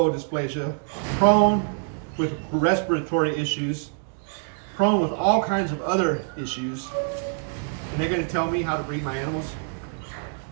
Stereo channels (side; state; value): left; silent; 62 dB below the other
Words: dysplasia, prone with respiratory issues, prone with all kinds of other issues. And they're going to tell me how to breed my animals?